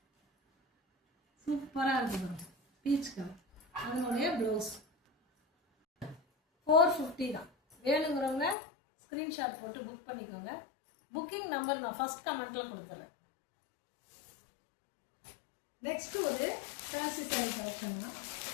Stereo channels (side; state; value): right; drops out; at 8.6 s